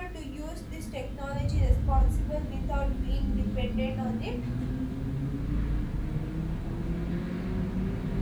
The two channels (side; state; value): both; identical; correlation 1.00